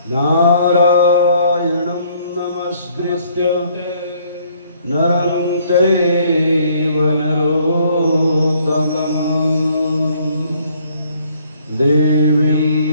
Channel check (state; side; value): inverted; both; correlation -0.63